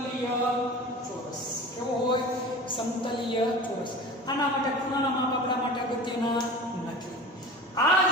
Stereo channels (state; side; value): normal; both; correlation 0.35